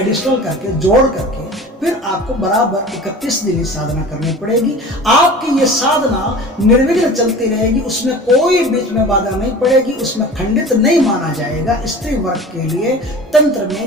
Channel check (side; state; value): both; normal; correlation 0.38